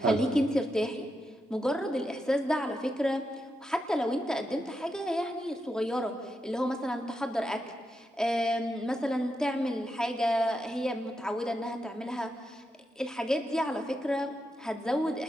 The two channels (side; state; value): both; normal; correlation 0.85